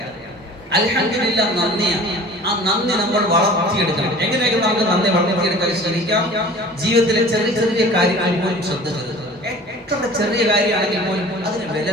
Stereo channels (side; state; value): both; normal; correlation 0.44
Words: അൽഹംദുലില്ലാഹ് നന്ദിയാണ്. ആ നന്ദി നമ്മൾ വളർത്തിയെടുക്കണം. എങ്ങനെയൊക്കെ നമുക്ക് നന്ദി വളർത്തിയെടുക്കാൻ ശ്രമിക്കാം? ജീവിതത്തിലെ ചെറിയ ചെറിയ കാര്യങ്ങൾ പോലും ശ്രദ്ധ ചെലുത്തുക. എത്ര ചെറിയ കാര്യമാണെങ്കിൽ പോലും അതിന് വില